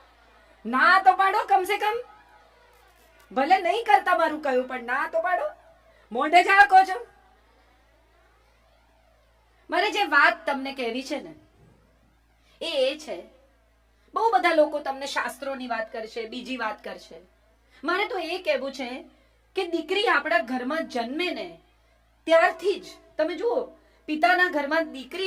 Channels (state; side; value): identical; both; correlation 1.00